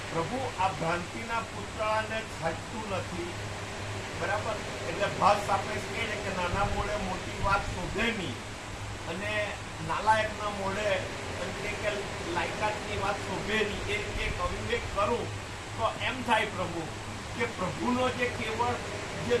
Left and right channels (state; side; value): identical; both; correlation 1.00